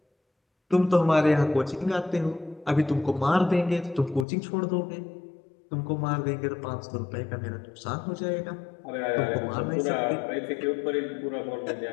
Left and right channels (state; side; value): drops out; right; at 4.2 s